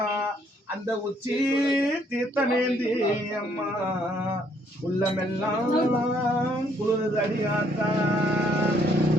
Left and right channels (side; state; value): both; normal; correlation 0.67